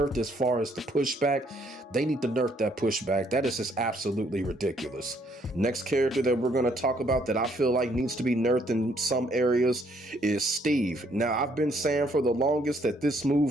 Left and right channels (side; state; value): both; normal; correlation 0.68